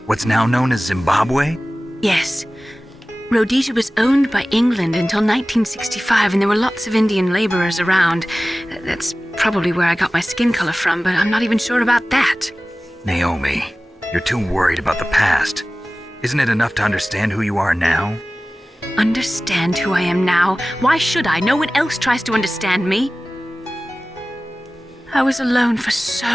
what's now known as Zimbabwe? Yes. Rhodesia was owned by England until 1965, and there were lots of Indian laborers around. That's probably where I got my skin color from, but I'm not even sure about that. Naomi, you're too worried about the past. Isn't it enough to understand who you are now? Understand who I am now? Why should I? No one else tries to understand me. I was alone for so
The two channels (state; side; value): normal; both; correlation 0.97